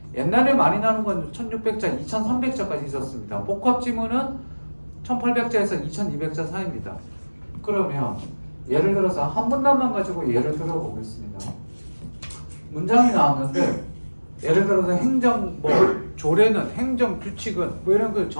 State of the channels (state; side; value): inverted; both; correlation -1.00